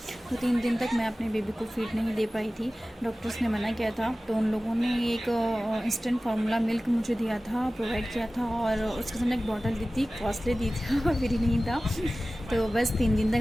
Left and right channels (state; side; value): normal; both; correlation 0.96